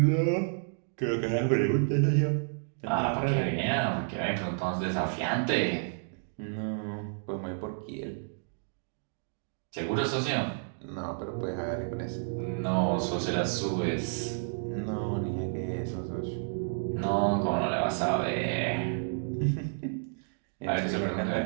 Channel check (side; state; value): left; silent; digital silence